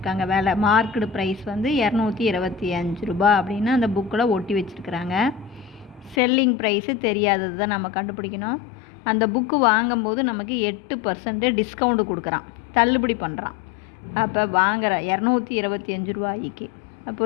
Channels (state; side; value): drops out; right; at 6.2 s